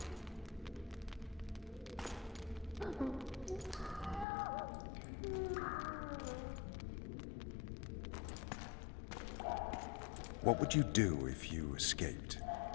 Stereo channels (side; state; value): right; drops out; at 4.2 s